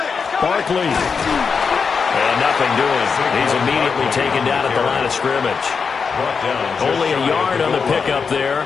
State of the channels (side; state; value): right; quieter; 5.6 dB